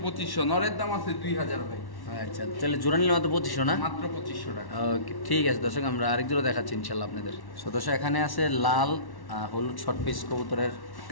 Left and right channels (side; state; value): right; late; 1.1 ms